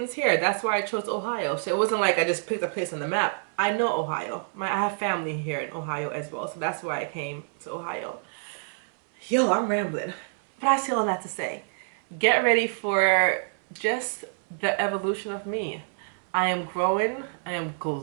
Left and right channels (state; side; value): silent; left; 60 dB below the other